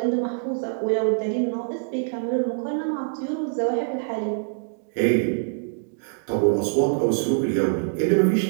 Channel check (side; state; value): left; silent; digital silence